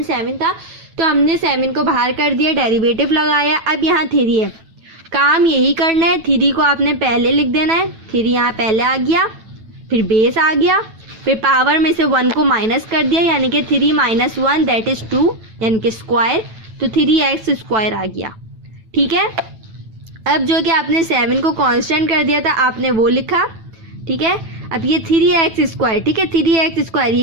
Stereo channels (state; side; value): late; left; 9.1 ms